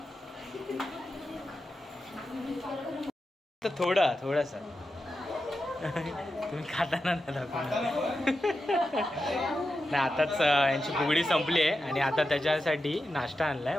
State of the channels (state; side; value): normal; both; correlation 0.90